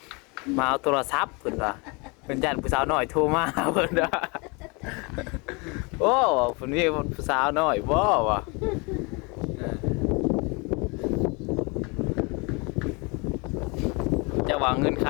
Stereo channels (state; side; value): quieter; right; 29.6 dB